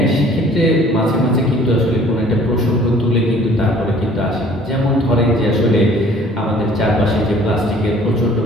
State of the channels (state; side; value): normal; both; correlation 0.54